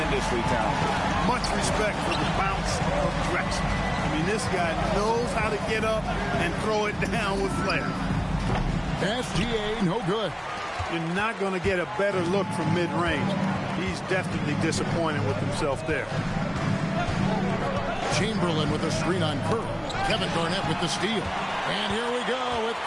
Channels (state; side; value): identical; both; correlation 1.00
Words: talented. Much respect for the bounce of Drexler. I mean, this guy knows how to get up and throw it down with flair. SGA, no good. You're not going to get a better look from mid-range. He's definitely disappointed with himself there. Chamberlain with a screen on Curry. Kevin Garnett with the steal. And here we go with